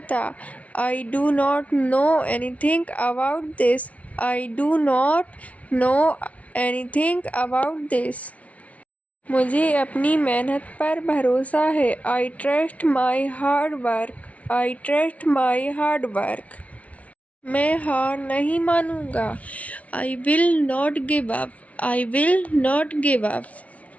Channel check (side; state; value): right; late; 0.066 ms